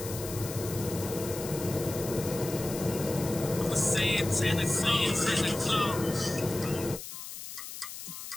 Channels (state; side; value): noise; left; hiss, 10 dB below the sound